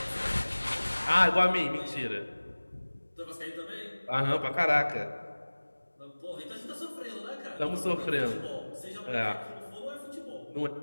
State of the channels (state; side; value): inverted; both; correlation -1.00